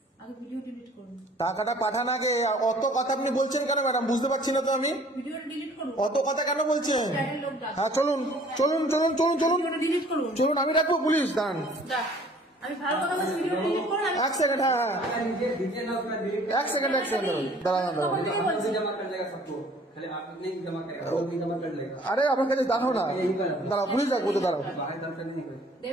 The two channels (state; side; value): normal; both; correlation 0.54